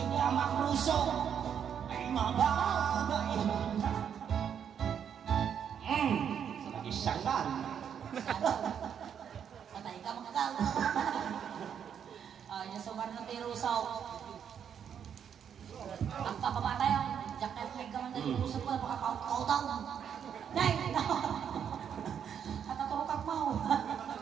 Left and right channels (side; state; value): left; quieter; 8.2 dB